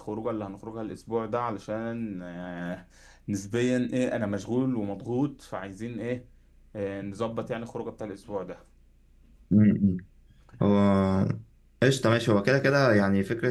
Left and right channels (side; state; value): both; identical; correlation 1.00